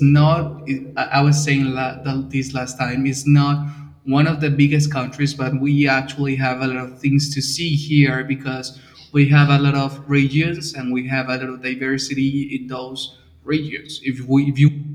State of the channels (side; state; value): both; identical; correlation 1.00